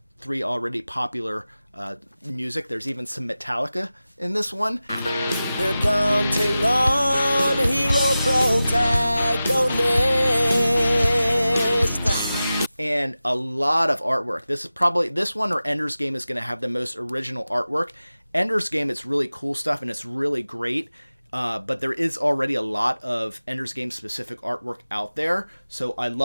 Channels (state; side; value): inverted; both; correlation -0.95